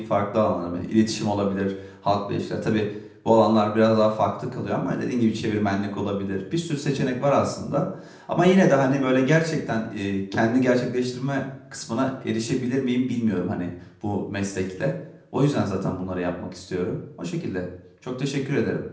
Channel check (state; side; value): identical; both; correlation 1.00